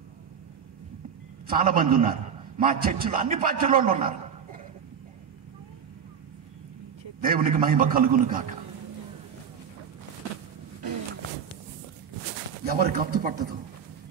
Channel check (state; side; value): quieter; left; 7.4 dB